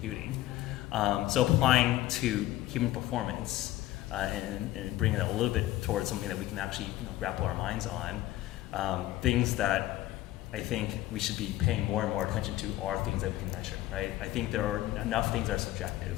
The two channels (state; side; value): quieter; right; 15.4 dB